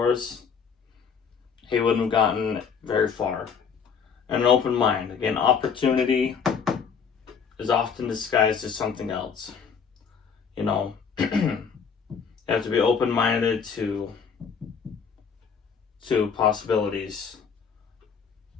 he wouldn't have gotten very far. And an open mind. Again, opportunity is often disguised as something else. You know, you have to be open-minded to possibilities.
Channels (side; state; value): right; quieter; 6.4 dB